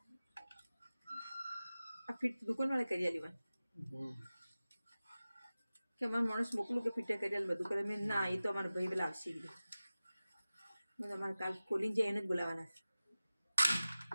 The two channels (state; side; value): inverted; both; correlation -0.96